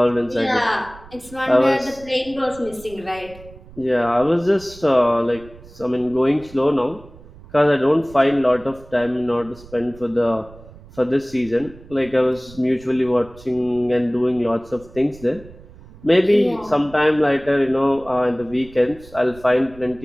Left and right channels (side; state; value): right; noise; rumble, 21 dB below the sound